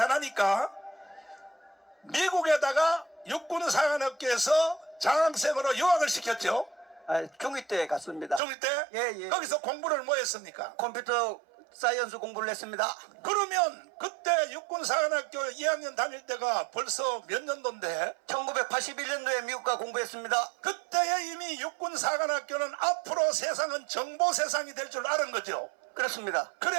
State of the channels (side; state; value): left; drops out; at 8.4 s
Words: 미국에다가 육군사관학교에서 장학생으로 유학을 시켰죠. 중2 때 갔습니다. 중2 때? 예. 거기서 공부를 뭐 했습니까? 컴퓨터 사이언스 공부를 했습니다. 그러면 그때 육군사관학교 2학년 다닐 때가 벌써 몇 년도인데? 1981년도에 미국가 공부했습니다. 그때에 이미 육군사관학교는 앞으로 세상은 정보 세상이 될 줄 아는 거죠. 그렇습니다.